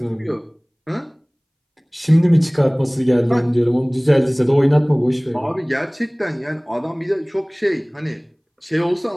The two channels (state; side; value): identical; both; correlation 1.00